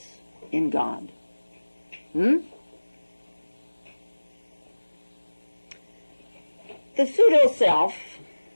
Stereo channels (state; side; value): inverted; both; correlation -1.00